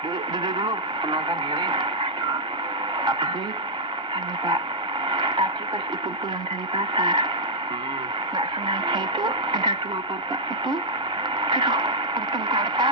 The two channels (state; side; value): normal; both; correlation -0.07